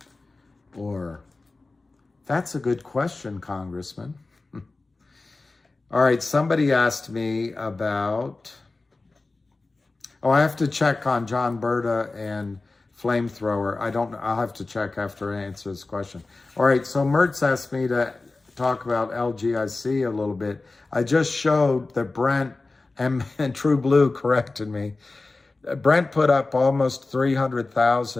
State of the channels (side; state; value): right; quieter; 3.4 dB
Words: Or, that's a good question, Congressman. All right, somebody asked me about, I have to check on John Berta and Flamethrower. I'll have to check after I answer this question. All right, so Mertz asked me to talk about LGIC a little bit. I just showed that Brent and True Blue corrected me. Brent put up almost